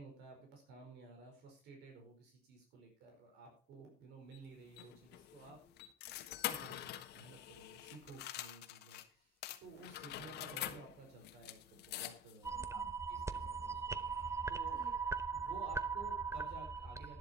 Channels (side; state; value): both; normal; correlation 0.36